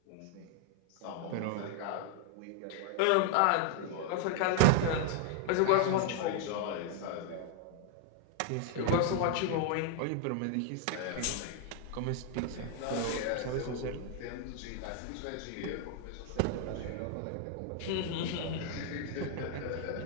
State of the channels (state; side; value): different; both; correlation 0.00